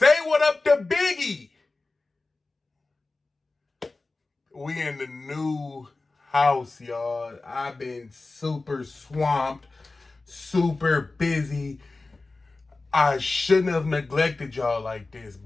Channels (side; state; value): right; quieter; 3.4 dB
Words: what up to Biggie. We in the new house, y'all. I've been super swamped, super busy. I shouldn't have neglected y'all like this,